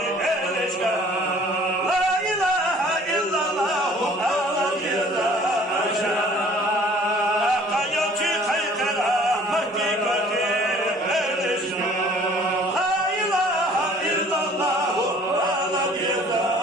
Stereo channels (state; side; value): normal; both; correlation 0.53